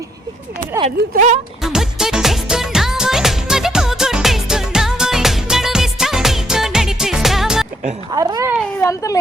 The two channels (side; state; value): both; normal; correlation 0.71